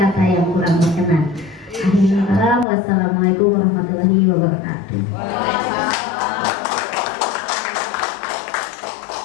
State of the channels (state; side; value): drops out; right; at 2.7 s